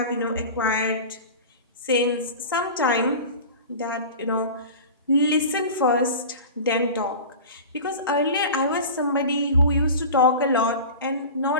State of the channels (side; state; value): both; inverted; correlation -0.34